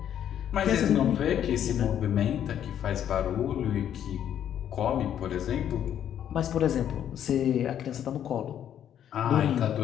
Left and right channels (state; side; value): quieter; right; 10.0 dB